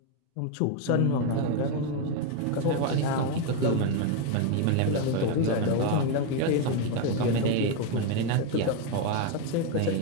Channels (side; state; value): both; different; correlation 0.02